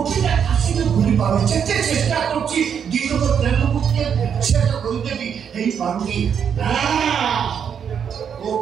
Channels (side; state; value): left; quieter; 7.6 dB